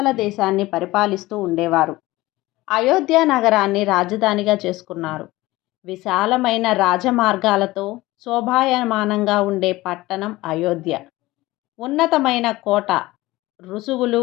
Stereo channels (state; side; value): quieter; right; 18.9 dB